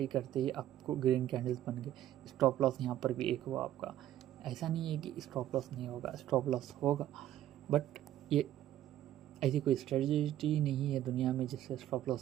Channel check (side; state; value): left; quieter; 12.6 dB